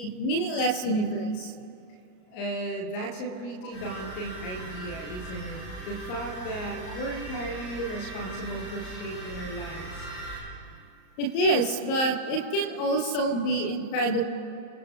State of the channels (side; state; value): right; late; 38 ms